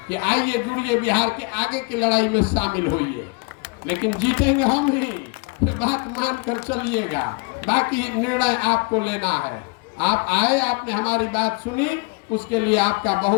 कि आइए जुड़िए, बिहार के आगे की लड़ाई में शामिल होइए। लेकिन जीतेंगे हम ही, फिर बात मान कर चलिएगा, बाकी निर्णय आपको लेना है। आप आए, आपने हमारी बात सुनी, उसके लिए आपका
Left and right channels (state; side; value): quieter; right; 31.6 dB